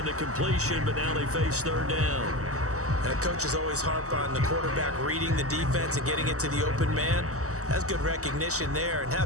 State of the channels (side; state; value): left; late; 0.65 ms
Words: the completion, but now they face 3rd down. And the coaches always harp on the quarterback reading the defense and getting it to the open man. That's good recognition there. And how